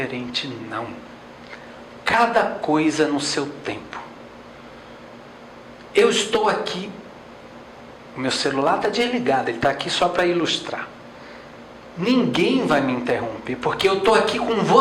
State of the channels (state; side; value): identical; both; correlation 1.00